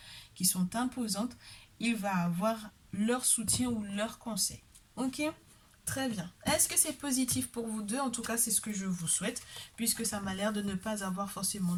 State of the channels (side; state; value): both; identical; correlation 1.00